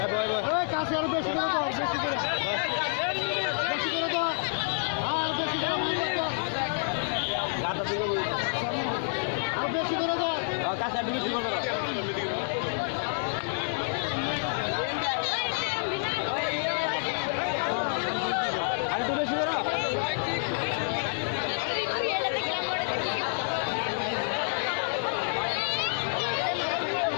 বই বই। ওই কাছে আরো বেশি করে দাও, বেশি করে। বেশি করে দাও। আর বেশি করে দাও। গাদার দিকে বই। আর বেশি করে দাও। ও কাছে একটু বেশি করে দাও। আর একটু বেশি করো।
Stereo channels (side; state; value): right; silent; digital silence